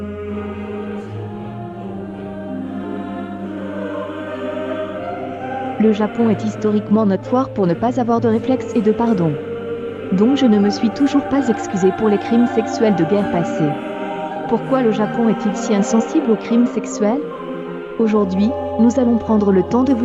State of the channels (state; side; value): identical; both; correlation 1.00